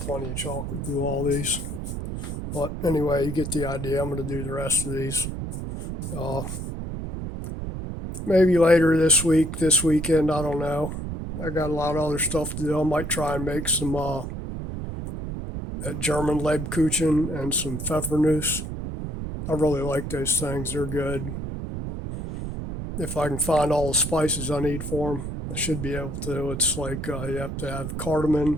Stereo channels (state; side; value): noise; right; rumble, 5 dB below the sound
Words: of chocolate through all these. But anyway, you get the idea. I'm gonna do the rest of these. Uh, Maybe later this week, this weekend. I don't know. I got a lot of other stuff to do. I might try and make some that German Lebkuchen and some Pfeffernuss. I really like those things. They're good. If I can find all the spices I need for them, I should be able to. It's like you have to have